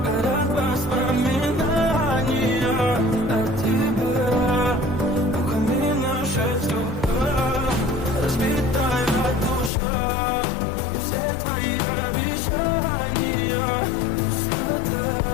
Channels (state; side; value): drops out; right; at 9.7 s